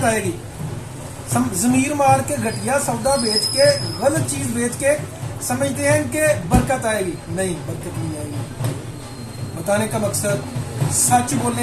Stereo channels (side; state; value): both; identical; correlation 1.00